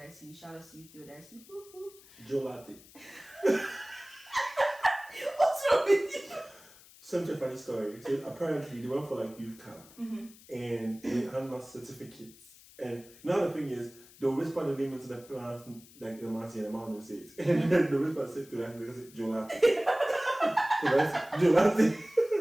Shout out to you, Theodicey. Woo woo. Gelati. What's wrong with you? Such a funny story. So apparently they went for like youth camp and they handed out certificates. And now the thing is, they'll whisper the name into the plant, like the Marty and the man will say it. And then the whisper said to that, they say Gelati. Gelati.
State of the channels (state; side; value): noise; left; hiss, 23 dB below the sound